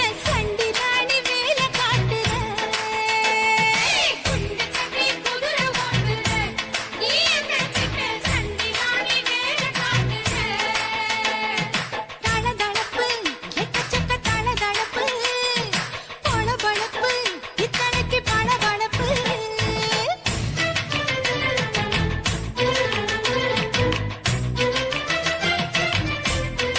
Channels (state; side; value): identical; both; correlation 1.00